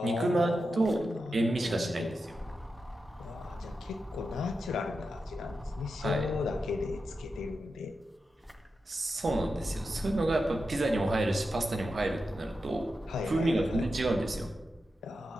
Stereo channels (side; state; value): both; normal; correlation 0.89